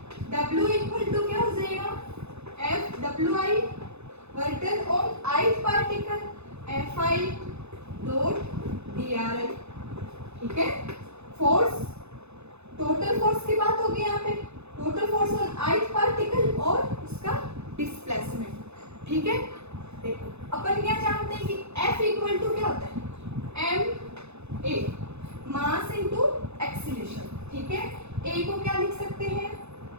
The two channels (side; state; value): left; late; 0.81 ms